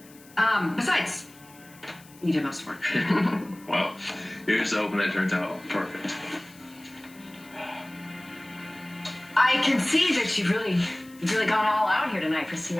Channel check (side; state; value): left; noise; hiss, 24 dB below the sound